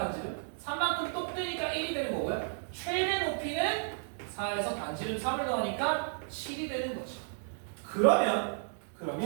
3만큼 똑 되니까 1이 되는 거고요. 최대 높이는 4에서 반지름 3을 더하니까 7이 되는 거죠. 그러면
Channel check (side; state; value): left; silent; digital silence